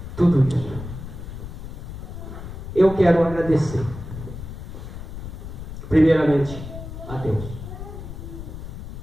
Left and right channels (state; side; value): noise; left; rumble, 10 dB below the sound